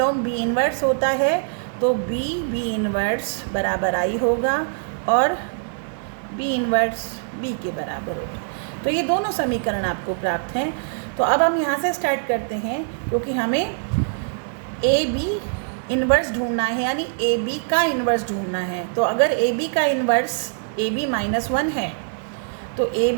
b इन्वर्स होता है तो b इन्वर्स बराबर i होगा और b इन्वर्स b के बराबर होगा। तो ये दोनों समीकरण आपको प्राप्त हैं। तो अब हम यहाँ से स्टार्ट करते हैं, क्योंकि हमें ए बी इन्वर्स ढूंढना है, यानी ए बी का इन्वर्स ढूंढना है। तो अगर ए बी का इन्वर्स ए बी -1 है तो ए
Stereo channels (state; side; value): silent; left; digital silence